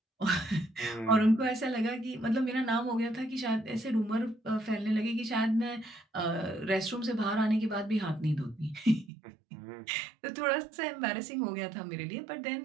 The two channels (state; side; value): drops out; left; at 9.1 s